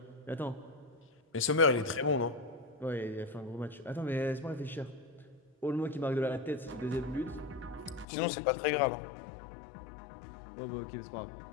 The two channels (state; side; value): drops out; right; at 8.1 s